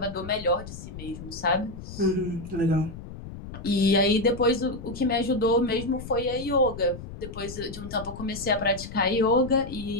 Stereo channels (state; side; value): noise; left; rumble, 12 dB below the sound